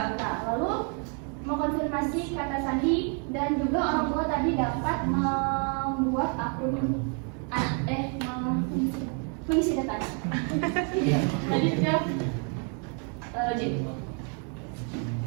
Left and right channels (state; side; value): quieter; left; 39.5 dB